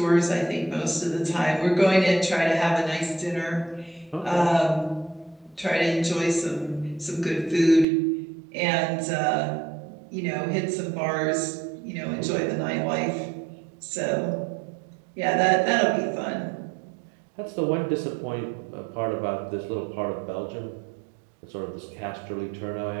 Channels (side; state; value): left; drops out; at 7.9 s